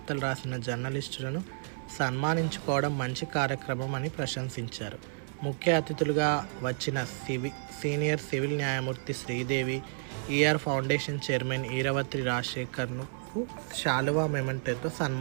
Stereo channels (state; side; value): silent; left; 57 dB below the other